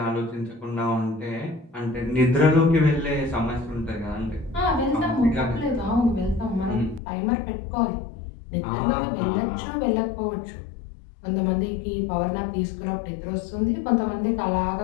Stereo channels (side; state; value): right; drops out; at 7.0 s